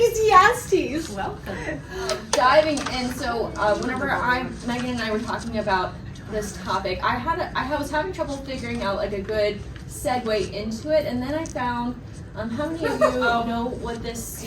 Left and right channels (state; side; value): identical; both; correlation 1.00